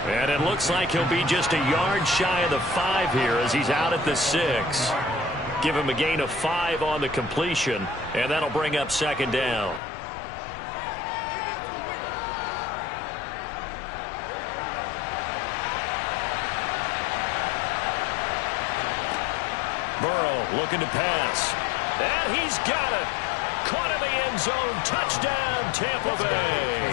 And it looks like he'll be just a yard shy of the 5 here as he's out at the 6. Give him a gain of 5 on the completion, and that'll bring up 2nd down. Burrow looking to pass. And he's got it. Caught in the end zone. Touchdown, Tampa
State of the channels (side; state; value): right; drops out; at 9.8 s